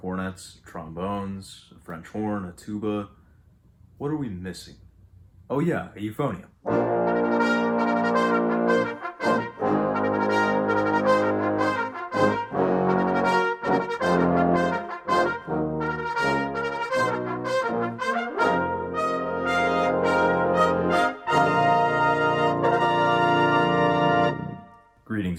trombones, a French horn, a tuba. What are we missing? Oh yeah, a euphonium.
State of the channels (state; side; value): identical; both; correlation 1.00